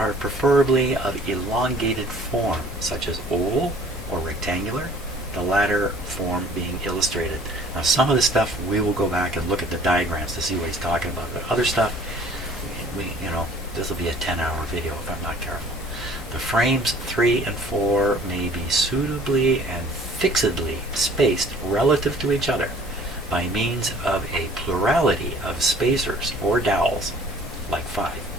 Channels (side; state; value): both; normal; correlation 0.52